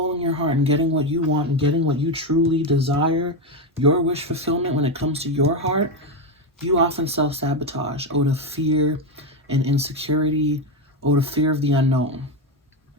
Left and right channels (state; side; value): normal; both; correlation 0.10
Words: your heart and getting what you want and getting what you truly desire, your wish fulfillment when it comes to your heart, you often self-sabotage out of fear and insecurity, out of fear of the unknown,